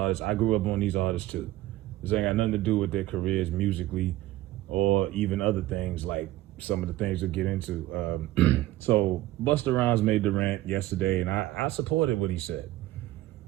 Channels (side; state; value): left; quieter; 15.8 dB